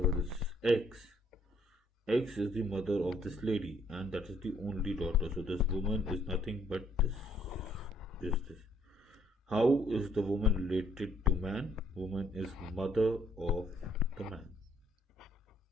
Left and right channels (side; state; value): both; normal; correlation 0.67